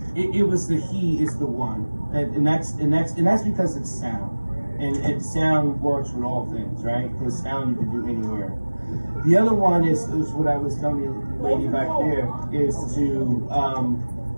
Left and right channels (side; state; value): both; inverted; correlation -1.00